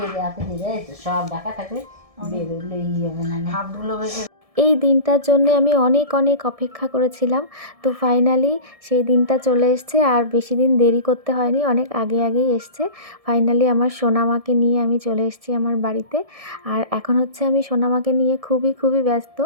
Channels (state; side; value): late; left; 1.7 ms